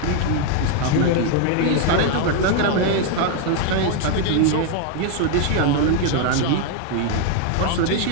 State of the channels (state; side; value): different; both; correlation 0.01